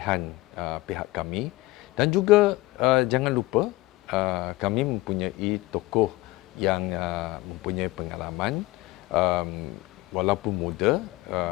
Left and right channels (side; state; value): right; quieter; 20.0 dB